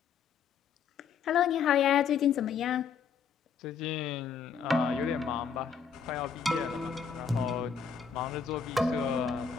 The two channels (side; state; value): right; quieter; 6.4 dB